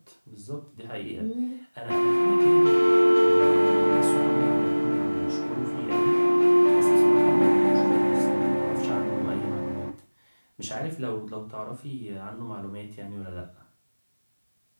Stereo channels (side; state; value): both; inverted; correlation -1.00